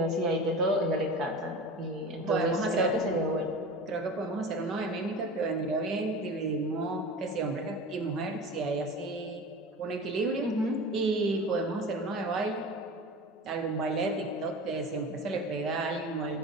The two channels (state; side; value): normal; both; correlation 0.33